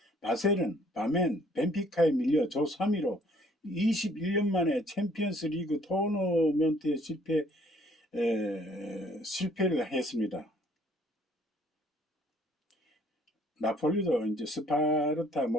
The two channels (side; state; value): both; normal; correlation 0.61